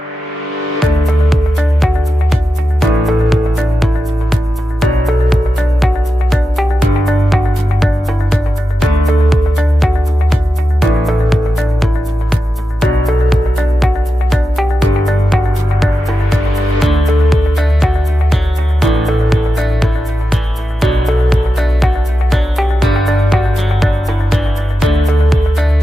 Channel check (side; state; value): both; normal; correlation 0.90